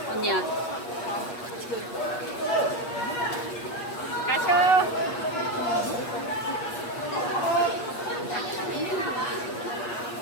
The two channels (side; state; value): right; late; 8.4 ms